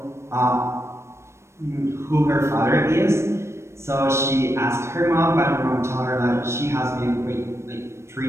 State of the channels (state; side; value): late; left; 0.13 ms